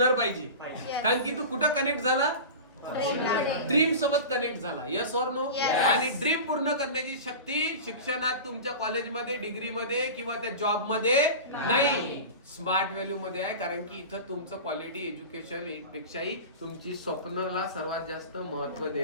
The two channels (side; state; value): both; inverted; correlation -0.31